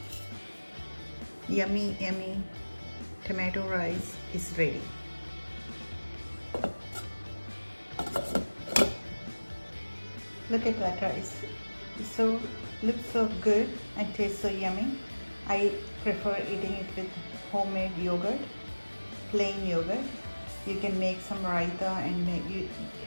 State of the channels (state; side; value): inverted; both; correlation -1.00